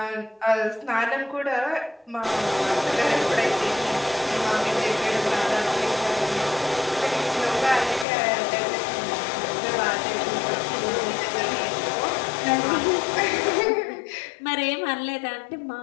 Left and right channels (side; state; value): right; drops out; at 8.1 s